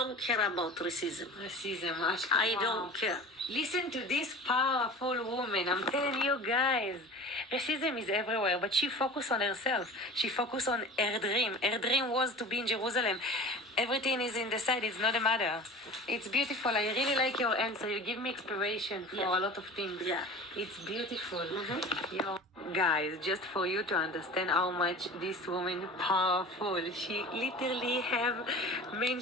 care about racism. Racism. I don't care. Listen to this powerful woman. I'm telling you guys. Racism is everywhere, but she focused on herself. She focused on her dream. Her dream was to be in Jerusalem. Everything is in the side. It's not a matter. It's beautiful. I really like your answer. You give me inspiration for a lot of things. Yeah. It's beautiful. Guys, just for you to understand how much this woman powerful. She literally have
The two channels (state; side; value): normal; both; correlation 0.38